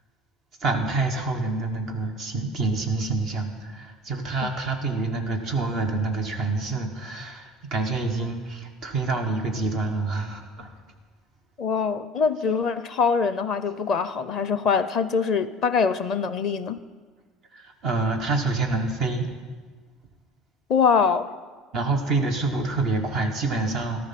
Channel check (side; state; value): both; normal; correlation 0.39